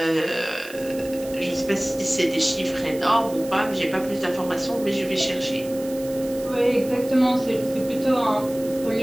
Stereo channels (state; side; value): noise; right; hiss, 17 dB below the sound